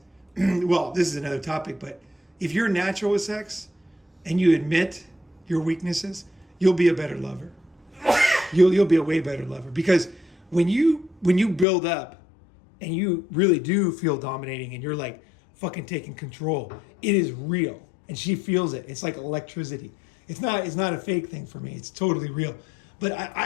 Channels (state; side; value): drops out; right; at 11.7 s